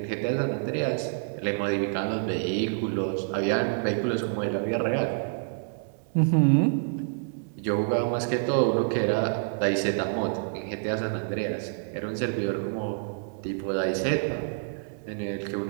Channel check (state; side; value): silent; left; 60 dB below the other